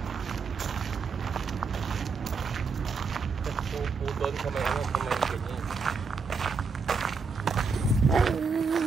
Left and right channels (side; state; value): left; quieter; 4.9 dB